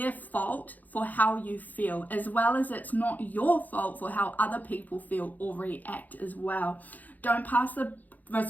fault for how you feel, as well as it's not your fault for how other people feel or react as well. Don't pass the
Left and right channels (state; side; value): late; right; 0.082 ms